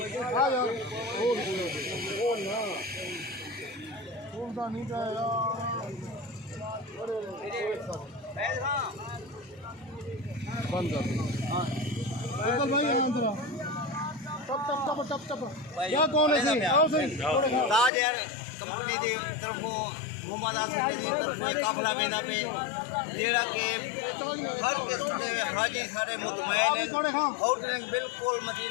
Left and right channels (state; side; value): drops out; right; at 17.9 s